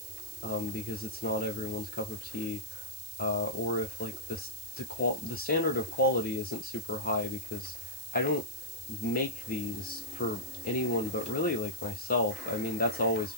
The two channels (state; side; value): noise; right; hiss, 11 dB below the sound